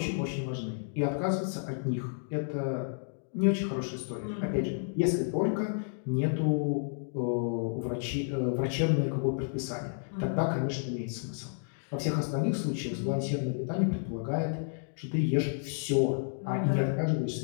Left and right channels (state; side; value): silent; right; digital silence